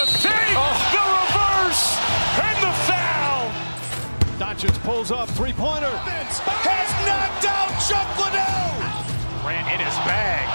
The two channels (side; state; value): both; inverted; correlation -1.00